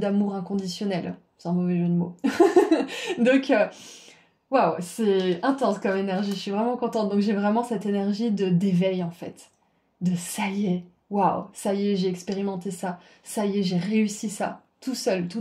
inconditionnel. C'est un mauvais jeu de mots. Donc waouh, c'est intense comme énergie, je suis vraiment contente. Donc j'ai vraiment cette énergie de d'éveil en fait. De ça y est, waouh, ça y est, j'ai expérimenté ça. Ça y est, j'ai réussi ça. Tout seul,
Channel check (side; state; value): both; identical; correlation 1.00